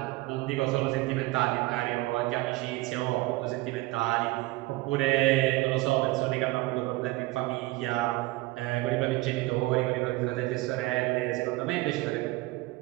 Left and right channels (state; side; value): quieter; left; 20.4 dB